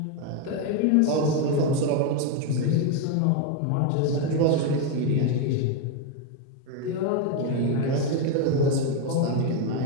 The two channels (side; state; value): both; different; correlation 0.01